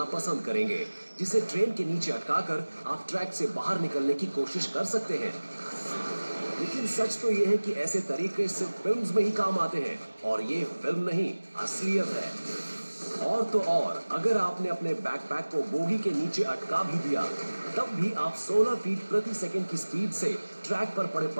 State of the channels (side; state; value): both; inverted; correlation -1.00